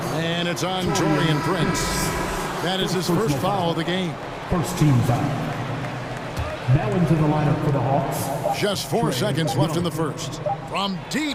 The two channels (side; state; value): both; identical; correlation 1.00